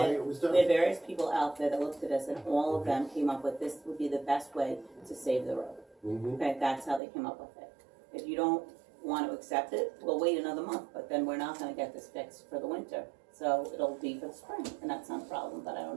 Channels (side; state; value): left; drops out; at 7.0 s